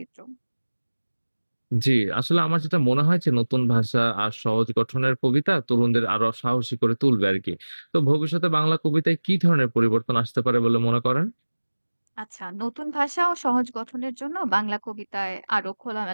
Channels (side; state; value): both; inverted; correlation -1.00